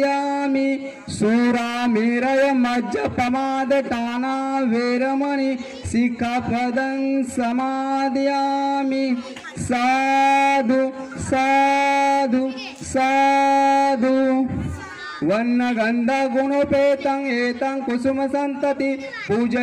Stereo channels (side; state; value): both; identical; correlation 1.00